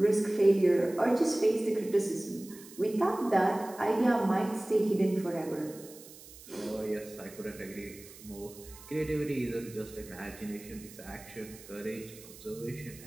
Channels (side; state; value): right; noise; hiss, 19 dB below the sound